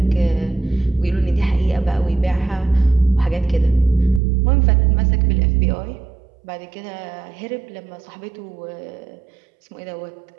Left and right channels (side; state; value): left; drops out; at 4.2 s